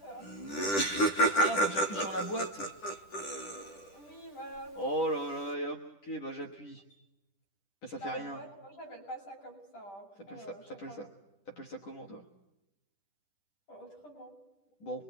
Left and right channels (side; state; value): right; late; 10 ms